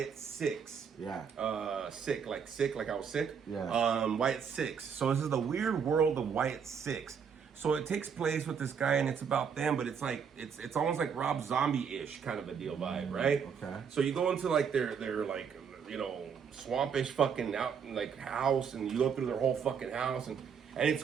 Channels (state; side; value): quieter; left; 6.8 dB